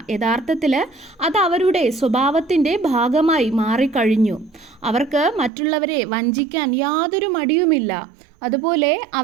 യഥാർത്ഥത്തിൽ അത് അവരുടെ സ്വഭാവത്തിൻ്റെ ഭാഗമായി മാറിക്കഴിഞ്ഞു. അവർക്ക് മറ്റുള്ളവരെ വഞ്ചിക്കാൻ യാതൊരു മടിയുമില്ല. അതുപോലെ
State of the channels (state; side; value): drops out; left; at 5.5 s